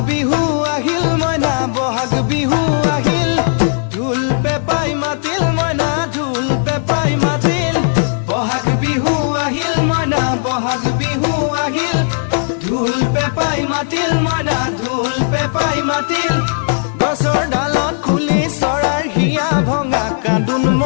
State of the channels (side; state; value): right; silent; 60 dB below the other